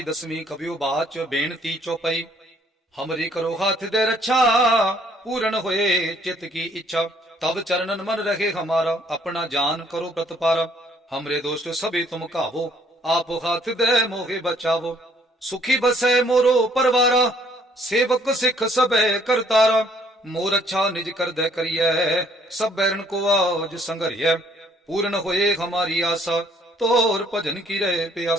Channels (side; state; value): both; normal; correlation 0.64